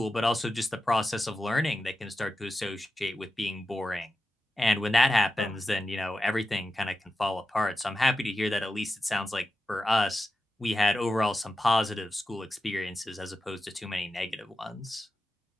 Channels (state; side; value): normal; both; correlation 0.91